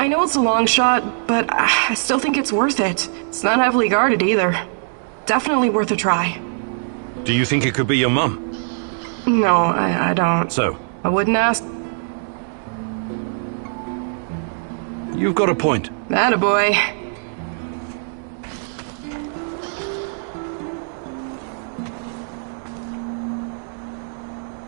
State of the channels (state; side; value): silent; left; digital silence